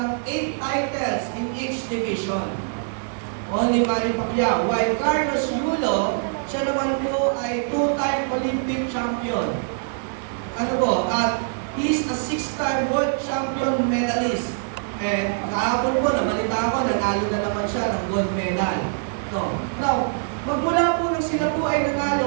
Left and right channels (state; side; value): silent; left; 63 dB below the other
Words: 8 titles in each division. Only Manny Pacquiao. While Carlos Yulo, siya naman po ay 2-time Olympic champion. Ano po? At he's a 6-time world champion medalist. Kahapon po, nabalita ko, nanalo na naman siya ng gold medal. No. Now, magmula po nang sila po ay